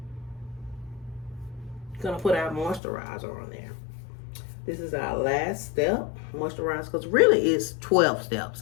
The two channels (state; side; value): drops out; right; at 2.8 s